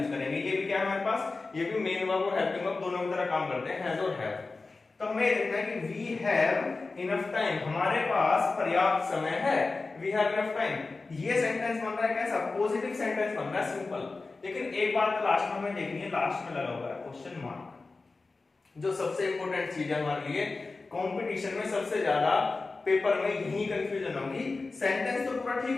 करेंगे। ये भी क्या है हमारे पास, ये भी मेन वर्ब और हेल्पिंग वर्ब दोनों की तरह काम करते हैं, हैज और हैव। तो हमें देखना है कि वी हैव इनफ टाइम, हमारे पास पर्याप्त समय है, वी हैव इनफ टाइम। ये सेंटेंस बन रहा है कैसा, पॉजिटिव सेंटेंस बन रहा है, सिंपल। लेकिन एक बात लास्ट में हमें देखनी है, लास्ट में लगा हुआ है क्वेश्चन मार्क, जो सबसे इंपॉर्टेंट चीज है हमारे लिए। कंपटीशन में सबसे ज्यादा पेपर में यही कंफ्यूजन होगी। सेंटेंस तो पूरा ठीक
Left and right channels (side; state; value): right; quieter; 3.8 dB